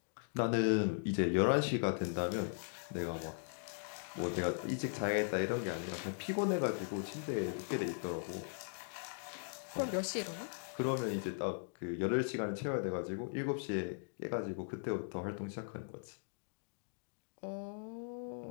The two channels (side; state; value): right; silent; digital silence